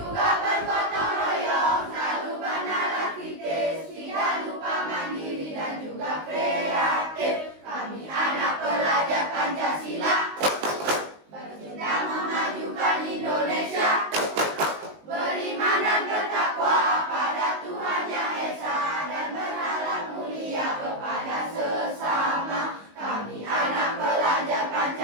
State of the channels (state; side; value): late; left; 19 ms